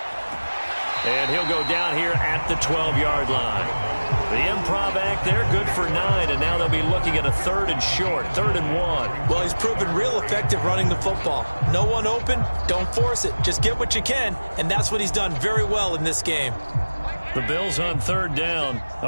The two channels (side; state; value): both; inverted; correlation -1.00